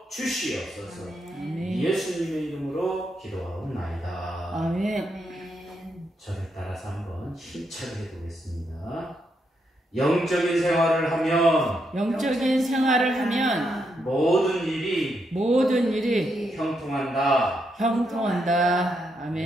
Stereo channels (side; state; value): both; normal; correlation 0.80